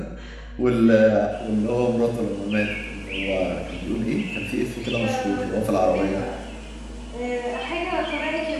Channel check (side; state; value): both; identical; correlation 1.00